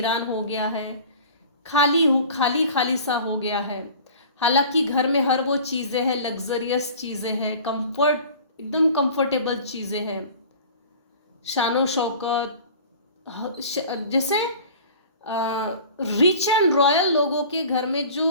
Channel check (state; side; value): inverted; both; correlation -0.42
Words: हो गया है, खाली खाली सा हो गया है। हालांकि घर में हर वो चीज़ें हैं, लग्जरियस चीज़ें हैं, कंफर्ट, एकदम कंफर्टेबल चीज़ें हैं, शानो शौकत, जैसे रिच एंड रॉयल लोगों के घर में जो